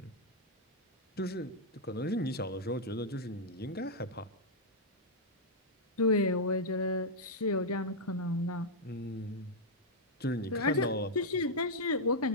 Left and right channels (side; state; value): both; normal; correlation -0.05